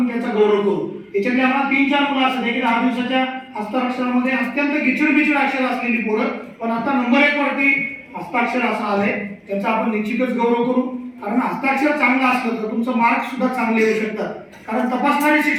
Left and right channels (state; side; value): identical; both; correlation 1.00